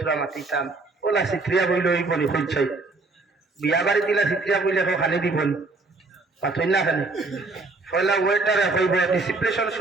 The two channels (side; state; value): left; quieter; 3.5 dB